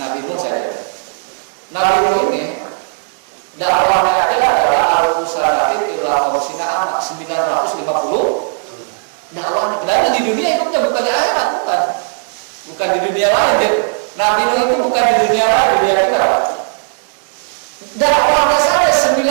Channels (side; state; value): left; silent; digital silence